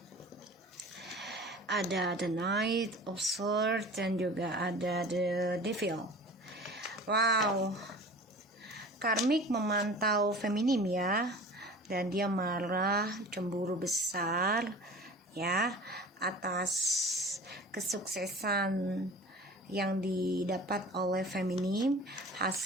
ada the Knight of Swords, dan juga ada the Devil. Wow, karmik memantau feminim ya, dan dia marah, cemburu besar ya atas kesuksesan yang didapat oleh feminim,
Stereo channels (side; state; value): both; normal; correlation 0.40